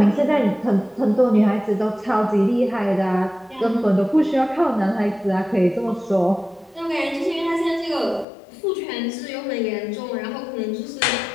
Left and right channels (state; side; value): drops out; right; at 8.2 s